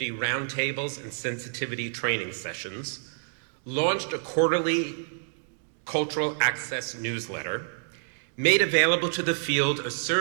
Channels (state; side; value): silent; left; digital silence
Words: roundtables and sensitivity training sessions, launched a quarterly cultural access newsletter, made available to the field a